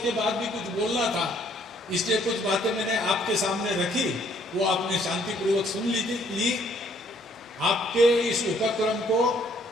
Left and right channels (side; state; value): both; normal; correlation 0.64